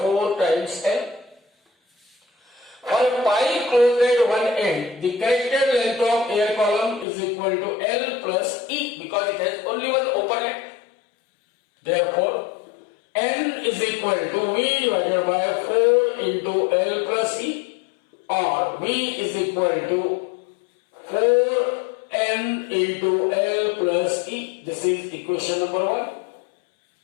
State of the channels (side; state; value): right; drops out; at 7.1 s